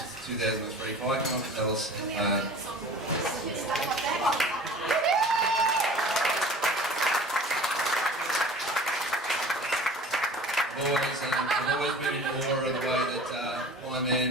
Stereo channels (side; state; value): both; normal; correlation 0.42